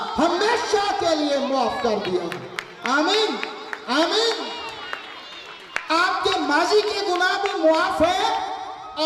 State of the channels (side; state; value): both; identical; correlation 1.00